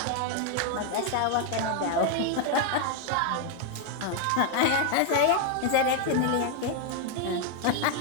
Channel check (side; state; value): both; different; correlation 0.01